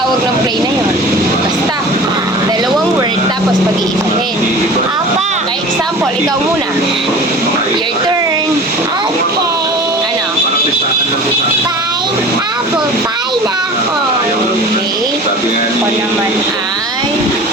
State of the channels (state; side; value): normal; both; correlation 0.39